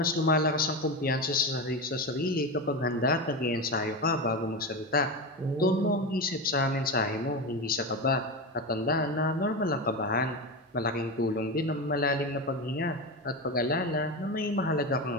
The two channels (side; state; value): both; normal; correlation 0.19